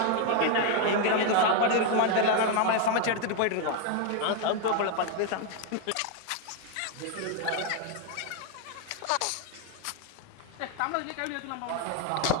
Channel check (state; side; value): different; both; correlation 0.01